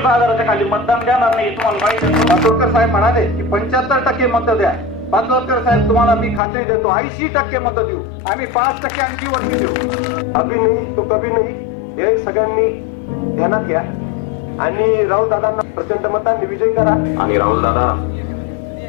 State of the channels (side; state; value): right; drops out; at 6.4 s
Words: हजाराच्या खाली मतदान देणार नाही. तुम्हाला माहिती आहे. पाटोळकर साहेब म्हणाले की 75% मत द्या. पाटोळकर साहेब तुम्हाला मी खात्री देतो 80% मत देऊ. आम्ही 5% आणखी वरती देऊ. अभी नाही तो कभी नाही हे सगळ्यांनी ध्यानात घ्या आणि राहुल दादांना प्रचंड मतांनी विजयी करा. आणि राहुल दादा